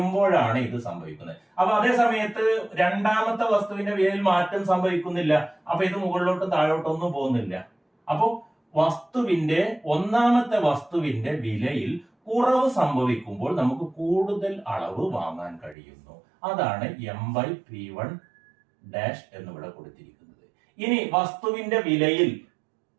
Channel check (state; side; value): drops out; left; at 15.8 s